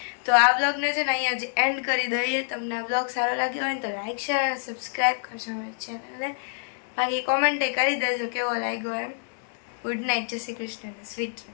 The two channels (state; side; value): silent; right; digital silence